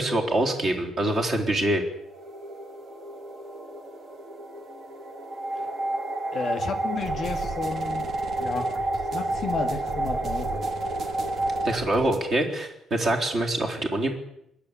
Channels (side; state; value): both; normal; correlation 0.80